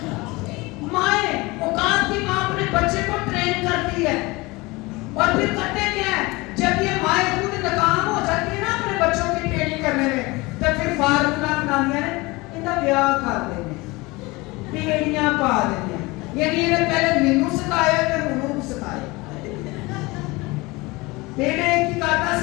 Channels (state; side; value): quieter; right; 23.2 dB